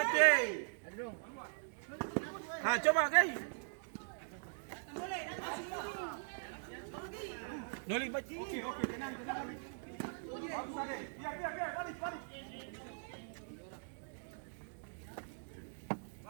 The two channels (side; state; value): left; silent; digital silence